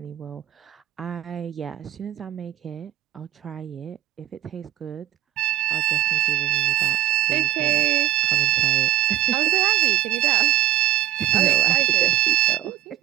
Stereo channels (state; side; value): quieter; left; 13.3 dB